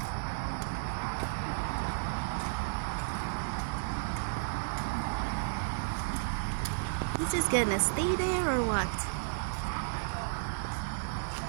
You just gonna stay there or what?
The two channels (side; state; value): left; silent; digital silence